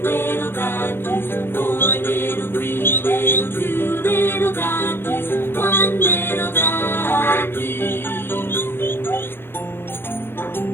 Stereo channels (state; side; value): late; right; 0.11 ms